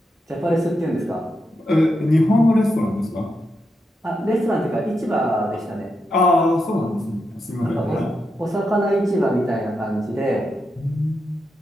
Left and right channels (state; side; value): normal; both; correlation 0.85